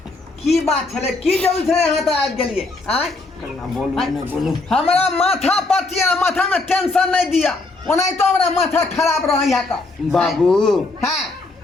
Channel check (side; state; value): right; quieter; 3.3 dB